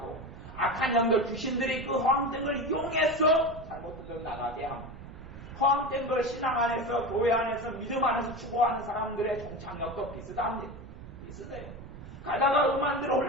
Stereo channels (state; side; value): noise; right; rumble, 14 dB below the sound